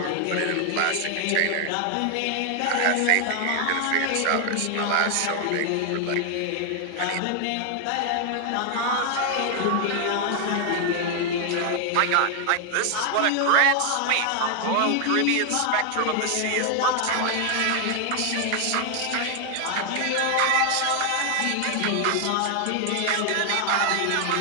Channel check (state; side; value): different; both; correlation 0.00